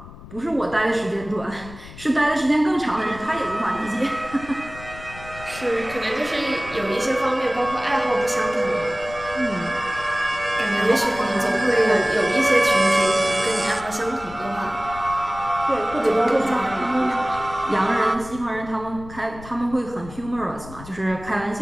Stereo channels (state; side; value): noise; left; rumble, 16 dB below the sound